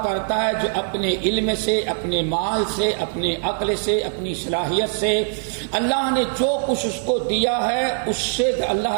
کرتا ہے جو اپنے علم سے، اپنے مال سے، اپنے عقل سے، اپنی صلاحیت سے اللہ نے جو کچھ اس کو دیا ہے اس سے اللہ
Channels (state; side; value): silent; left; 64 dB below the other